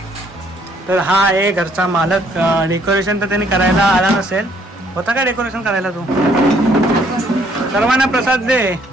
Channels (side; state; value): both; normal; correlation 0.65